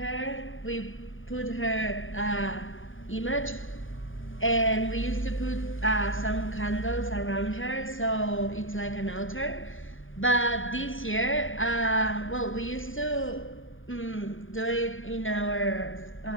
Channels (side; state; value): right; late; 0.58 ms